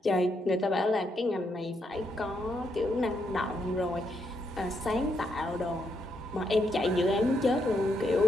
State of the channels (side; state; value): both; normal; correlation 0.78